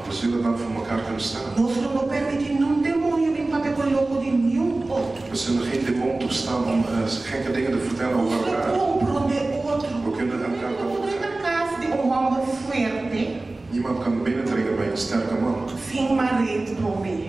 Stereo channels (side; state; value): left; quieter; 3.1 dB